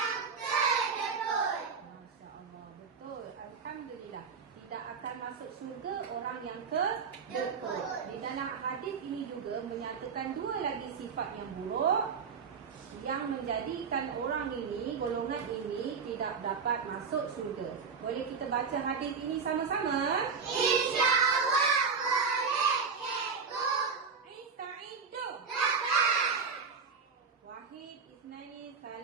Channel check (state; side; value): quieter; left; 5.6 dB